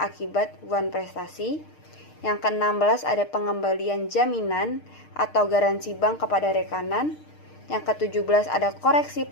buan prestasi. Yang ke-16, ada pengembalian jaminan atau garansi bank kepada rekanan. Yang ke-17, ada koreksi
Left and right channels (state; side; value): late; right; 6.6 ms